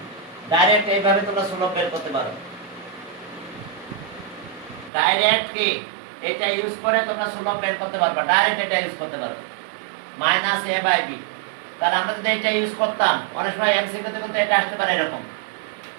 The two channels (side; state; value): left; drops out; at 4.9 s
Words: Direct এইভাবে তোমরা সুলভ বের করতে পারো। ডাইরেক্ট কি এটা ইউজ করে তোমরা সুলভ বের করতে পারবে, ডাইরেক্ট এটা ইউজ করতে পারবে minus a by b। তাহলে আমরা যদি এটা ইউজ করতাম অনেক সময় এমসিকিউ তে এটা আসতে পারে এরকম